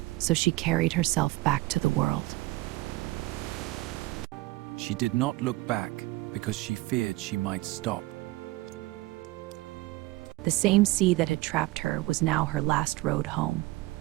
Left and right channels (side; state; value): left; quieter; 20.0 dB